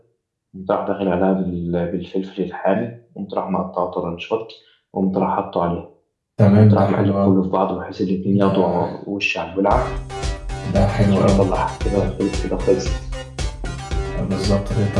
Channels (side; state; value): both; identical; correlation 1.00